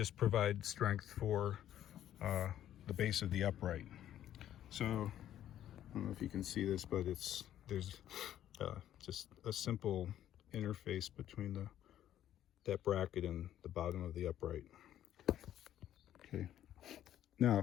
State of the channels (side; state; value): right; quieter; 11.6 dB